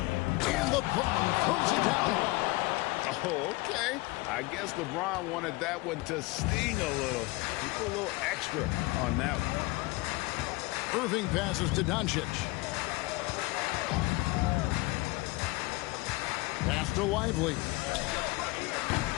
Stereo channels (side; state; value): right; quieter; 22.6 dB